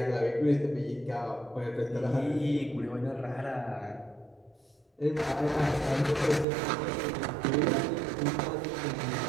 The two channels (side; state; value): left; drops out; at 6.5 s